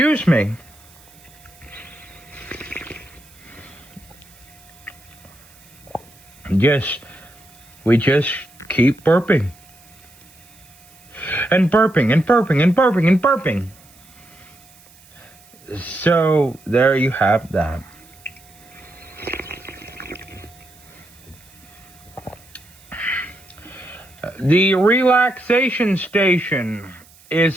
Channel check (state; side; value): noise; right; hiss, 26 dB below the sound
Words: me. We just keep burping. And burping and burping and burping and burping. So there you have that. The relaxation station